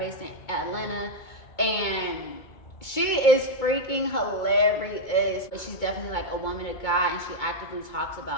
in Atlanta, and she is freaking hilarious. But she's definitely like a woman of God, and she actively talks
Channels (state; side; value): late; right; 2.2 ms